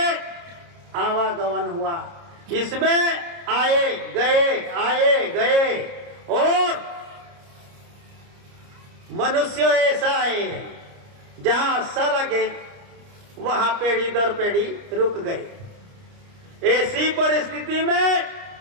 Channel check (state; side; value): late; left; 29 ms